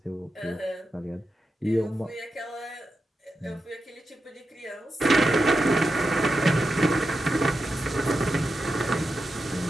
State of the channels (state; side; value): normal; both; correlation 0.89